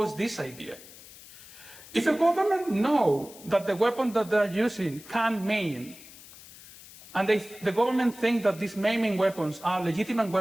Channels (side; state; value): left; noise; hiss, 19 dB below the sound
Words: this idea. If a government knows that the weapon that they're using can maim, and the government thinks that these maiming weapons are legitimate